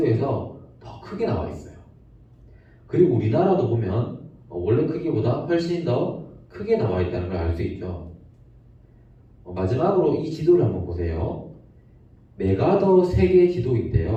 더 크게 나와 있어요. 그리고 우리나라도 보면 원래 크기보다 훨씬 더 크게 나와 있다는 걸 알 수 있죠. 마지막으로 이 지도를 한번 보세요. 메가더 세계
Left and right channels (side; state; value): both; identical; correlation 1.00